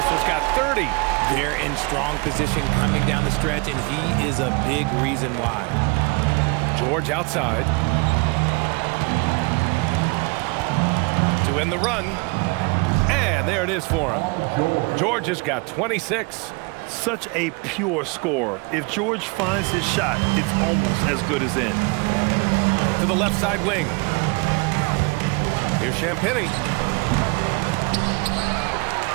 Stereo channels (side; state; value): left; quieter; 29.7 dB